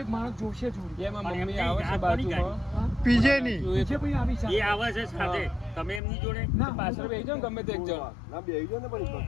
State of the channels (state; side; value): drops out; right; at 6.0 s